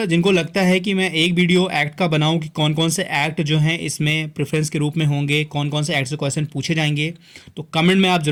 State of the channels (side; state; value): both; identical; correlation 1.00